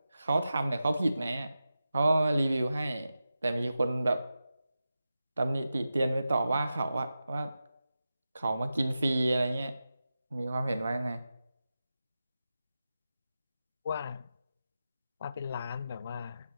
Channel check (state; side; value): inverted; both; correlation -0.92